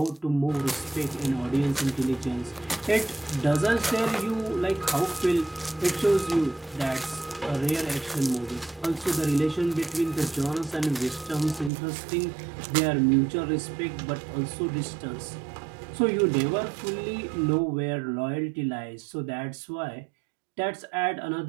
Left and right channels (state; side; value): drops out; left; at 11.7 s